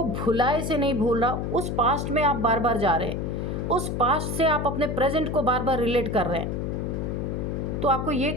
भुलाए से नहीं भूल रहा, उस पास्ट में आप बार बार जा रहे हैं। उस पास्ट से आप अपने प्रेजेंट को बार बार रिलेट कर रहे हैं। तो आपको ये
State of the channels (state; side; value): noise; left; hum, 2 dB below the sound